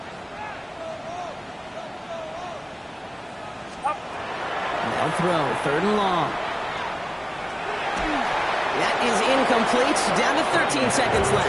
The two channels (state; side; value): identical; both; correlation 1.00